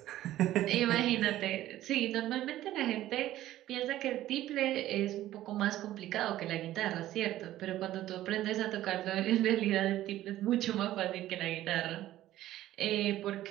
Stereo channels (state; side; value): quieter; left; 14.1 dB